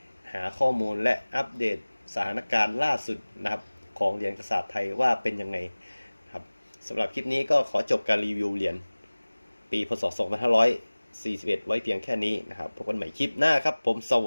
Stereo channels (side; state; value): both; inverted; correlation -1.00